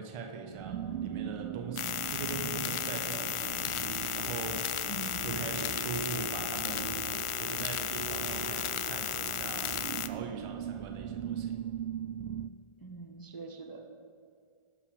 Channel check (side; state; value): right; late; 1.4 ms